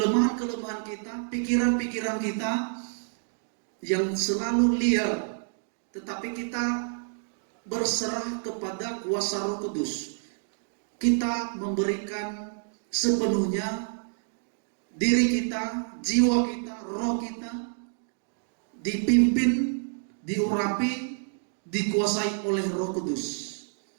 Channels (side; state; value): left; silent; digital silence